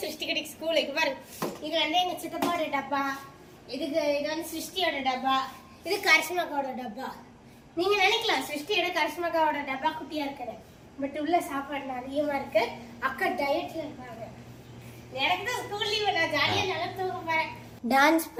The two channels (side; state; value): both; identical; correlation 1.00